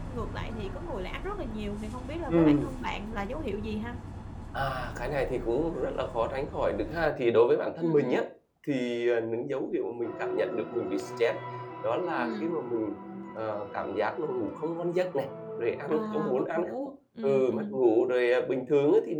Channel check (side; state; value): both; identical; correlation 1.00